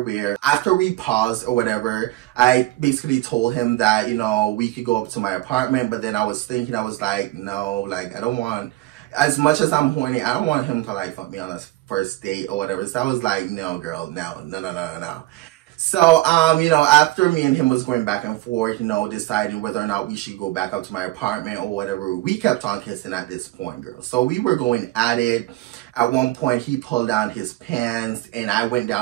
after we paused or whatever, I basically told him that, you know, we could go up to my apartment. But then I was thinking, I was like, no, like, I don't want, as much as I'm horny, I don't want him to like fuck me on a first date or whatever. So I was like, no, girl, no. So, you know, after me and him was going back and forth, you know, deciding whether or not we should go back up to my apartment or whatever, we kept on kissing at this point, girl. So we were going at it. At one point, he pulled down his pants and I went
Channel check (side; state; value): left; quieter; 17.8 dB